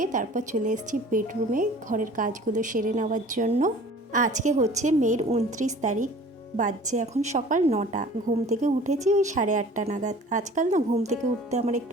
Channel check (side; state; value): both; normal; correlation 0.46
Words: তারপর চলে এসেছি বেডরুমে ঘরের কাজগুলো সেরে নেওয়ার জন্য। আজকে হচ্ছে মের 29 তারিখ, বাজছে এখন সকাল 9টা। ঘুম থেকে উঠেছি ওই 8:30 নাগাদ। আজকাল না ঘুম থেকে উঠতে আমার